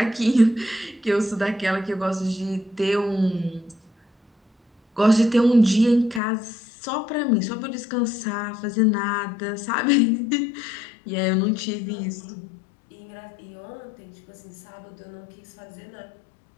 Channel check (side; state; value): right; drops out; at 6.2 s